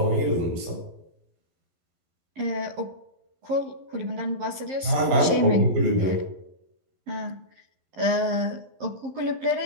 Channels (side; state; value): left; late; 11 ms